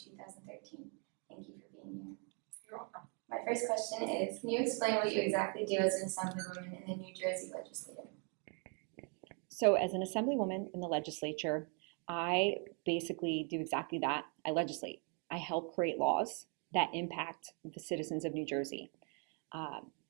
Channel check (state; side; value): quieter; left; 38.2 dB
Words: 2013. Thank you for being here. You're welcome. My first question is, can you explain what you exactly do as an Assemblywoman in the New Jersey Legislature? So as an Assemblywoman in the legislature, I basically do exactly that. I legislate. I help create laws that impact the citizens of New Jersey.